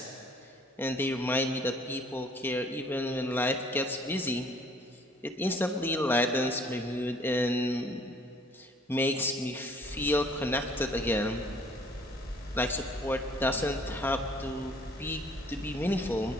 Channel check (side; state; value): both; normal; correlation 0.57